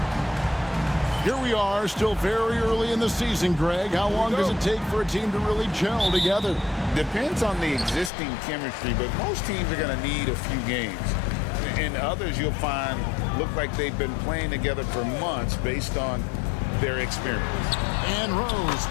Here we are, still very early in the season, Greg. How long does it take for a team to really gel together? Depends on the existing chemistry, but most teams are going to need a few games. And others you'll find look like they've been playing together for months based on their experience. And Rose,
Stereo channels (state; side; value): drops out; right; at 8.1 s